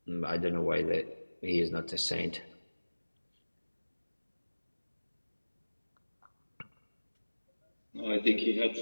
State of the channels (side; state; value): both; inverted; correlation -1.00